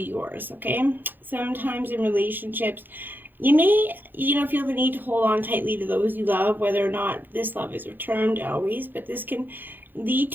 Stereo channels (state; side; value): late; left; 0.091 ms